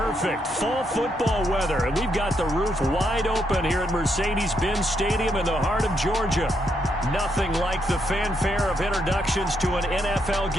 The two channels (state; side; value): normal; both; correlation 0.78